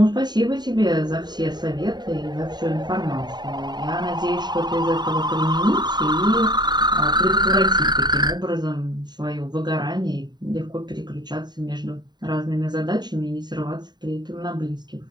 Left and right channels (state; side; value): late; left; 0.21 ms